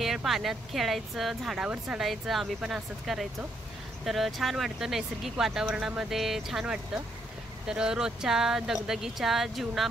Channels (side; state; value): both; normal; correlation 0.74